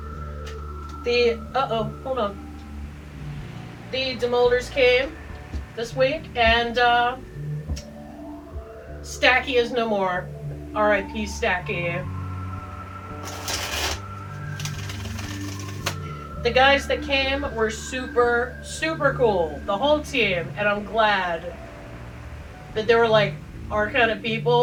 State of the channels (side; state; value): both; identical; correlation 1.00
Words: Hold on. The demolders came this week, and Stacky is no more. R.I.P. Stacky. The guys that came were super cool. The whole team. And I'm glad that they were like our kind of